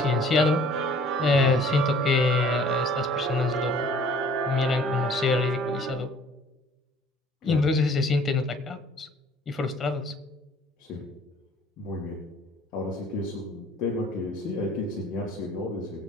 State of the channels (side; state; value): both; normal; correlation 0.53